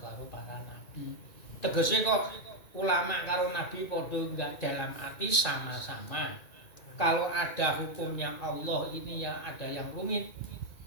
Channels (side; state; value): right; late; 1.9 ms